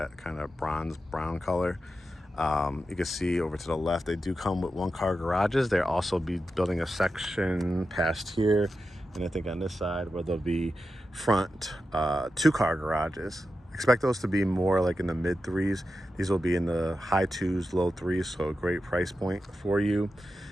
kind of bronze brown color. You can see over to the left, they do come with one-car garages. They'll also be building a section past here, and I think on this side where there'll be front two-car garages. Expect those to be more like in the mid threes. These will be in the high twos, low threes, so a great price point for you.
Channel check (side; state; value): both; normal; correlation 0.90